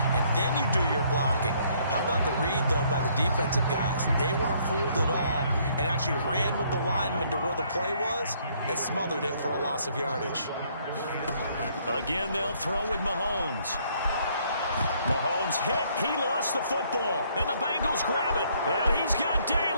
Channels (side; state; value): both; inverted; correlation -0.66